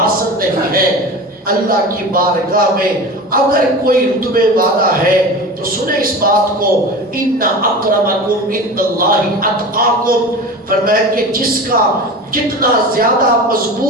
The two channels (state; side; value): normal; both; correlation 0.32